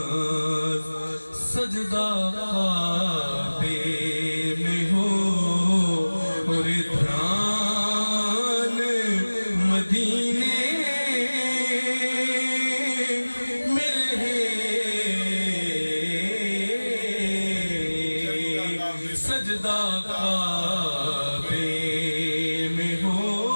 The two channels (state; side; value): inverted; both; correlation -1.00